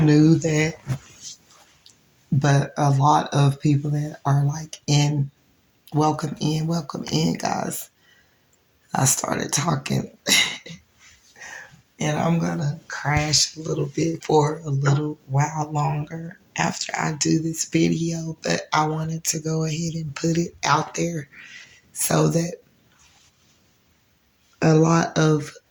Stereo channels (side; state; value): both; identical; correlation 1.00